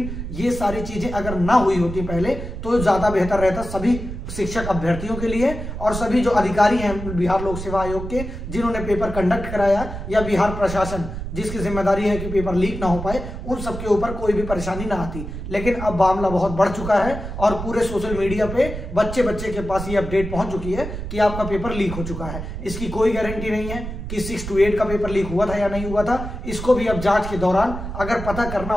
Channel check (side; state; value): right; noise; rumble, 7 dB below the sound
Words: ये सारी चीजें अगर ना हुई होती पहले तो ज्यादा बेहतर रहता सभी शिक्षक अभ्यर्थियों के लिए, और सभी जो अधिकारी हैं बिहार लोक सेवा आयोग के, जिन्होंने पेपर कंडक्ट कराया, या बिहार प्रशासन जिसकी जिम्मेदारी है कि पेपर लीक ना हो पाए, उन सबके ऊपर कोई भी परेशानी ना आती। लेकिन अब मामला बहुत बढ़ चुका है, और पूरे सोशल मीडिया पे बच्चे के पास ये अपडेट पहुंच चुकी है कि आपका पेपर लीक हो चुका है। इसकी कोई गारंटी नहीं है कि 6 to 8 का पेपर लीक हुआ था या नहीं हुआ था। इसको भी अब जांच के दौरान अगर पता करना